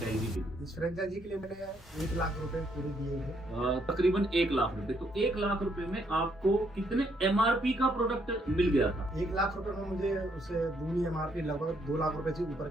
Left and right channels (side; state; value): both; normal; correlation 0.72